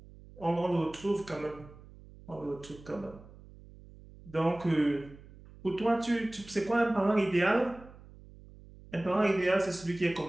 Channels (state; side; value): noise; right; hum, 20 dB below the sound